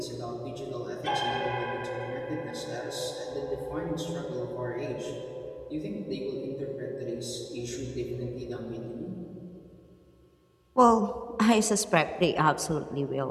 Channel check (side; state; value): both; identical; correlation 1.00